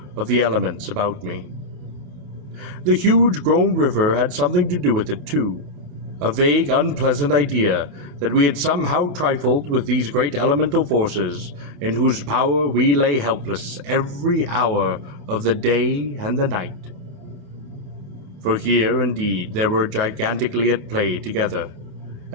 of the elements about me. The huge grown river had something to do with it too, a vague, unpleasant idea that we had somehow trifled with these great elemental forces in whose power we lay helpless every hour of the day and the night. For here, indeed, they were gigantically at play together,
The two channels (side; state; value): left; late; 27 ms